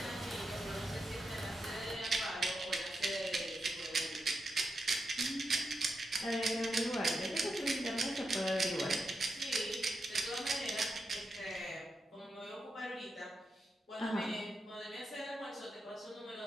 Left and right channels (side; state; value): both; normal; correlation 0.86